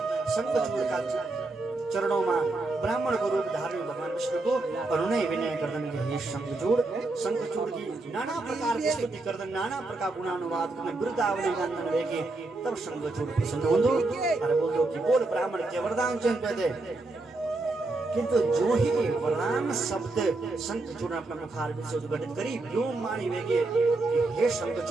शंखचूड़ का चरणों में ब्राह्मण को रूप धारण भगवान विष्णु को अनुनय विनय करदन के हे शंखचूड़ की नाना प्रकार की स्तुति करदन, नाना प्रकार गुणानुवाद करदन, वृद्धावली गानन वेगे। तब शंखचूड़ प्रसन्न होंदो और बोलो कि बोल ब्राह्मण के वरदान चंद दे। किंतु जो ही वरदान शब्द शंखचूड़ ने अपना मुखार से उद्घटित करी, व्योम मानी वेगे कि हे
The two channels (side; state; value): left; quieter; 3.2 dB